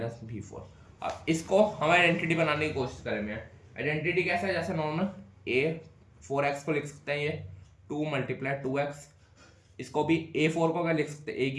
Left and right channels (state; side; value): identical; both; correlation 1.00